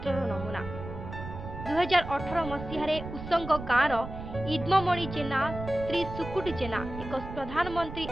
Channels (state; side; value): noise; right; rumble, 10 dB below the sound